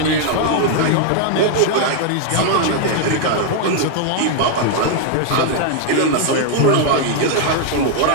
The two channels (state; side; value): different; both; correlation 0.00